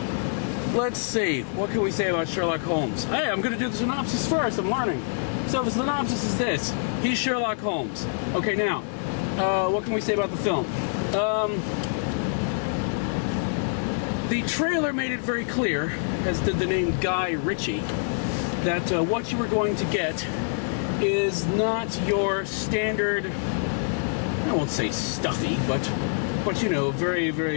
let's see, what can we say about Sherlock Holmes? Hey, I'm going to do the synopsis first, I'm learning. So the synopsis is this: he's Sherlock Holmes. Okay, now, what can we say about the film? The trailer made it very clear, as did the name Guy Ritchie, that what you were going to get is not your standard, I won't say stuffy, but you know, very,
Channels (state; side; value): silent; right; digital silence